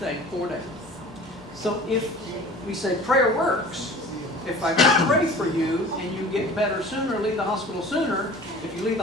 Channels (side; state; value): both; normal; correlation 0.43